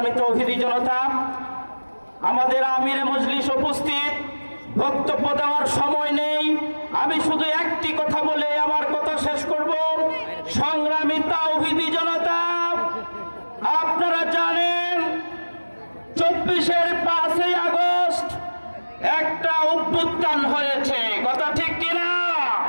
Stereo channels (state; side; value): inverted; both; correlation -1.00